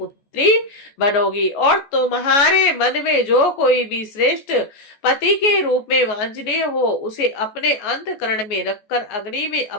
पुत्री बनोगी। और तुम्हारे मन में जो कोई भी श्रेष्ठ पति के रूप में वांछनीय हो, उसे अपने अंतःकरण में रखकर अग्नि में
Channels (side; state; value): right; late; 14 ms